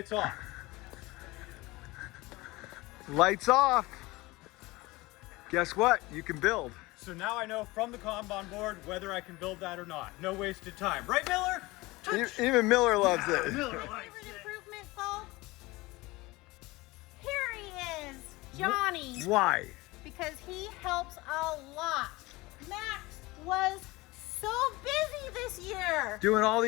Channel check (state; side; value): quieter; right; 21.5 dB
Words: off. Lights off. Guess what? You can build. So now I know from the Kanban board whether I can build that or not. No wasted time. Right, Miller? Touch. Even Miller loves it. Miller My likes favorite it. improvement, folks? Here he is, Johnny. Why? Because he helps a lot. Max was so busy this year. Doing all